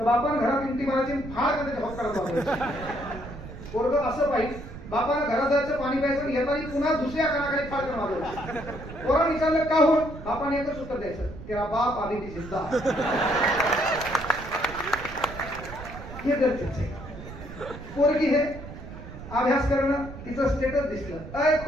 बापानं घरात इंटी मारायची, फार कधी जबाब करायचा. पोरग असं पाहिजे, बापानं घरात जायचं, पाणी प्यायचं, येताना पुन्हा दुसऱ्या कानाखाली फार करून मारलं. पोरानं विचारलं का होऊन, बापाने एकच उत्तर द्यायचं, तेरा बाप आधी ती जिंदा. हे गरजेचं आहे. पोरगी हे अभ्यास करणं, तिचं स्टेटस दिसलं, अय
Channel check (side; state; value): right; noise; rumble, 13 dB below the sound